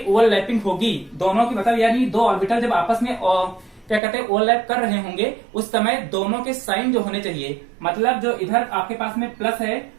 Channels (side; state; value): left; drops out; at 4.0 s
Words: होगी दोनों की, मतलब यानी दो ऑर्बिटल जब आपस में क्या कहते हैं ओवरलैप कर रहे होंगे, उस समय दोनों के साइन जो होने चाहिए, मतलब जो इधर आपके पास में प्लस है